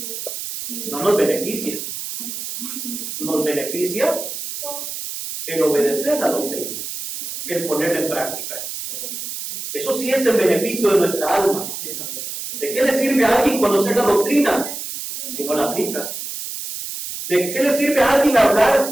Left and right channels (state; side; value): noise; right; hiss, 7 dB below the sound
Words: no nos beneficia. Nos beneficia el obedecer la doctrina, el ponerla en práctica. Eso sí es el beneficio de nuestra alma. ¿De qué le sirve a alguien conocer la doctrina si no la aplica? ¿De qué le sirve a alguien